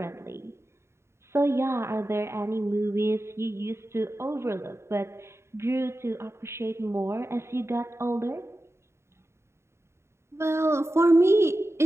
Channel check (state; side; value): late; left; 0.13 ms